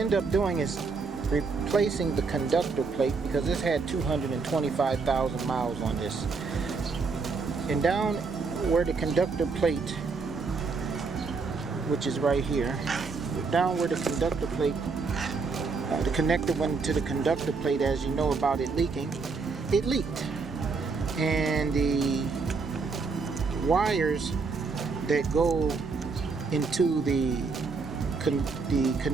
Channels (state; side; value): quieter; left; 4.6 dB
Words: up doing is replacing the conductor plate, because this had 225,000 miles on this. And down where the conductor plate, which is right here, down where the conductor plate, the connector went to the conductor plate, as you know about it leaking, it leaked. And the wires that go into the